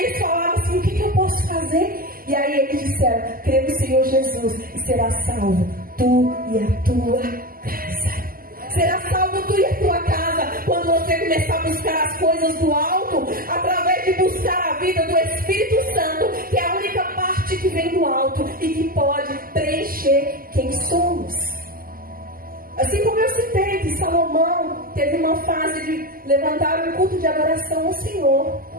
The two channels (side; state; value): left; late; 0.42 ms